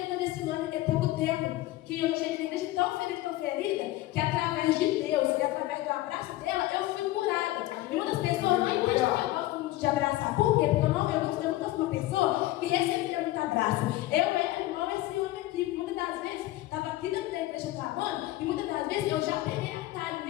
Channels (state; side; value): quieter; right; 16.6 dB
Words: desse ano, tem pouco tempo, que eu cheguei na igreja tão ferida, que através de Deus e através do abraço dela, eu fui curada. E muitas pessoas não entendem que eu gosto muito de abraçar. Por quê? Porque eu nunca fui uma pessoa que recebia muito abraço. Eu era igual esse homem aqui. Muitas das vezes, estava aqui dentro da igreja clamando, e muitas das vezes eu já peguei atalho.